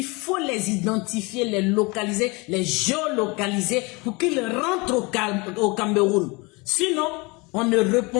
faut les identifier, les localiser, les géolocaliser pour qu'ils rentrent au Cameroun. Sinon, on ne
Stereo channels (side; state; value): right; quieter; 26.7 dB